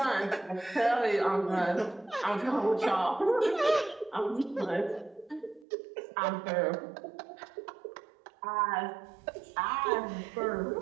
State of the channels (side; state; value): left; drops out; at 5.7 s